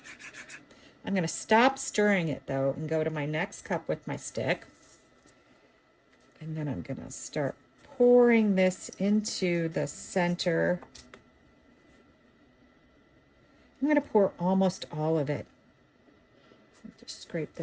I'm going to stop stirring it though and go to my next cup with my stick. And then I'm going to start pouring this into the center. I'm going to pour almost all of it. Just scrape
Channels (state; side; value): identical; both; correlation 1.00